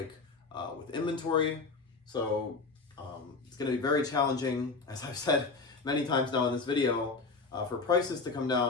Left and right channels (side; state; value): right; quieter; 4.1 dB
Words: with inventory. So it's going to be very challenging, as I've said many times now in this video, for prices to come